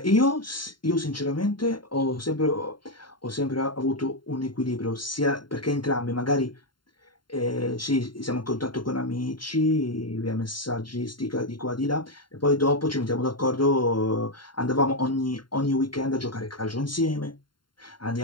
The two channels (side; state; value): right; late; 0.72 ms